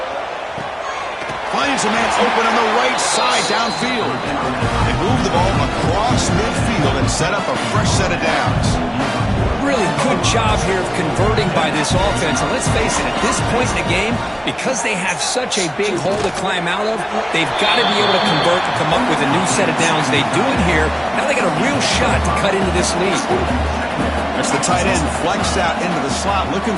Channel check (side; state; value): both; identical; correlation 1.00